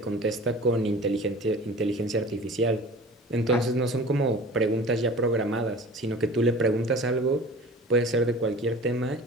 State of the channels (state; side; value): normal; both; correlation 0.41